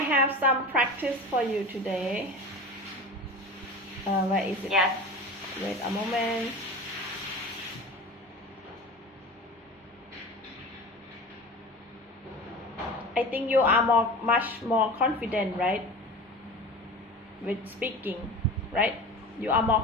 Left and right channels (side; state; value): both; normal; correlation 0.34